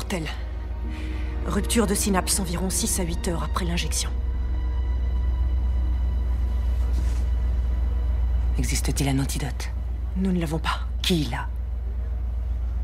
Rupture de synapse environ 6 à 8 heures après l'injection. Existe-t-il un antidote? Nous ne l'avons pas. Qui l'a?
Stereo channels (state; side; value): identical; both; correlation 1.00